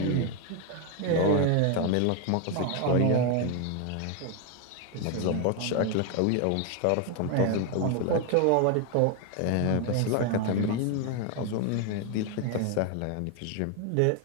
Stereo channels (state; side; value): different; both; correlation 0.01